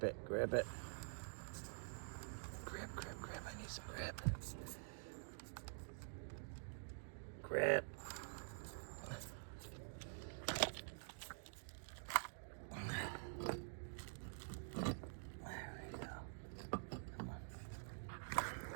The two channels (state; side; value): silent; left; digital silence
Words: it, grip it. Grip, grip, grip. I need some grip. Grip. There we go. Come on.